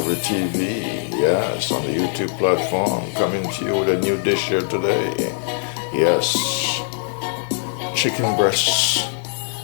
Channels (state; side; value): silent; right; 65 dB below the other